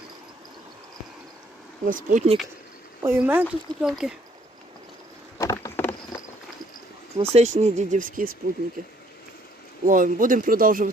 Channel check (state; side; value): normal; both; correlation 0.64